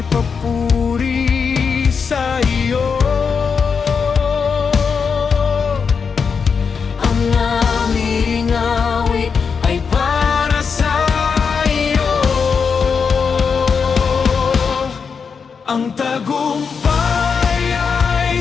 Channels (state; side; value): quieter; right; 5.8 dB